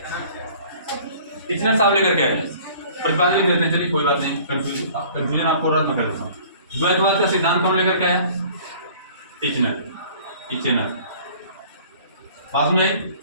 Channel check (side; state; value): both; inverted; correlation -0.50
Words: टीचर साहब लेकर के आए, प्रतिपादन देते हैं। चलिए कोई बात नहीं, कंफ्यूजन आपको रद्द मैं कर देता हूँ। द्वैतवाद का सिद्धांत कौन लेकर के आया? टीचर। बात में